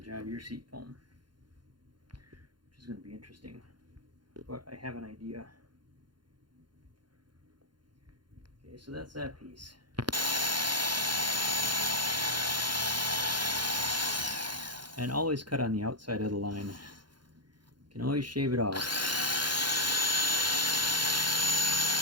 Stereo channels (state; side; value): late; left; 0.71 ms